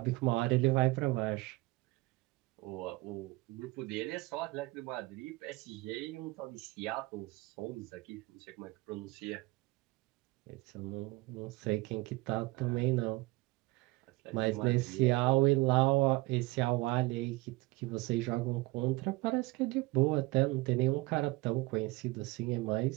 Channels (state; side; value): quieter; left; 22.2 dB